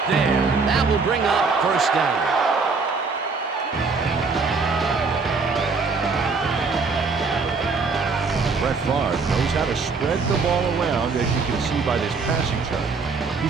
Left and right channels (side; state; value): left; quieter; 4.5 dB